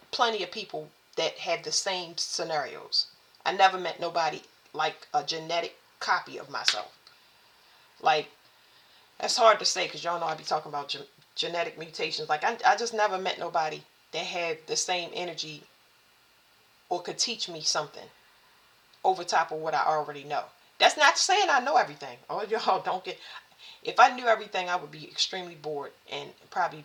plenty of people that have the same scenarios. I never met nobody like a genetic copy of myself. Like, that's hard to say because y'all know I be talking about genetic mutations. Like, I just never met nobody that had the same energy or could teach me something over top of what I already know. That's not saying I know everything. Oh, y'all don't get... If I knew everything, I would be extremely bored and probably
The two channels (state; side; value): identical; both; correlation 1.00